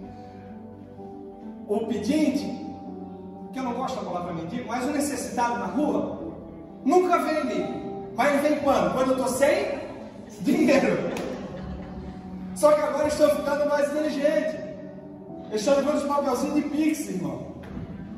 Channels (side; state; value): both; identical; correlation 1.00